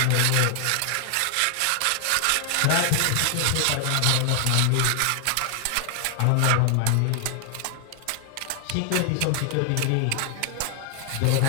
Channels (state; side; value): different; both; correlation 0.00